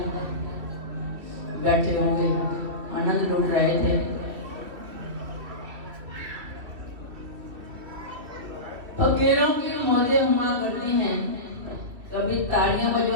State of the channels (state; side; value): late; left; 2.7 ms